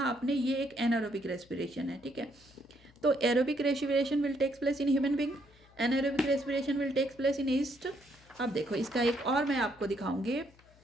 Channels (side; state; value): left; noise; hum, 27 dB below the sound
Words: आपने, ये एक एनारोबिक रेस्पिरेशन है। ठीक है, तो aerobic respiration will takes place in human being, anaerobic respiration will takes place in yeast. अब देखो इसका एक और मैं आपको दिखाऊंगी